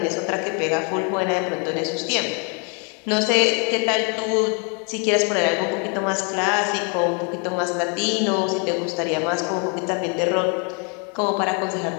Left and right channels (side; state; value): right; quieter; 37.3 dB